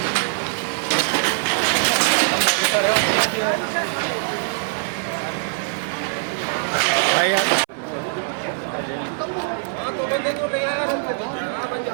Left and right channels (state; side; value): silent; left; 61 dB below the other